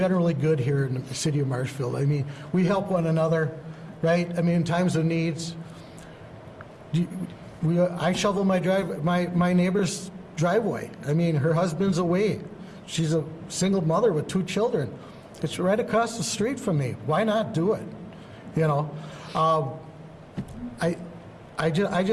good here in the city of Marshfield. I mean, we help one another, right? I mean, in times of needs. I shovel my neighbor's driveway. I mean, her husband's away. She's a single mother with 2 children. It's right across the street from me. Why not do it? You know, I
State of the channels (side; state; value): both; identical; correlation 1.00